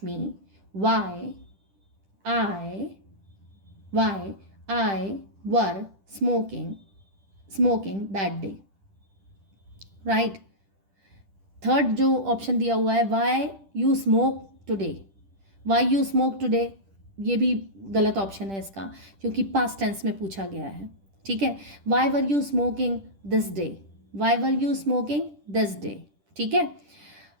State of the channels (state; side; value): late; left; 10 ms